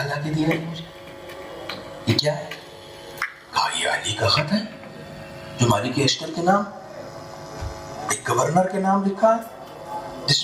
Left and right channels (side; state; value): both; identical; correlation 1.00